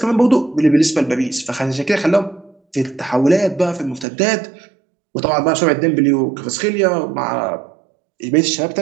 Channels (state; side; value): drops out; left; at 4.0 s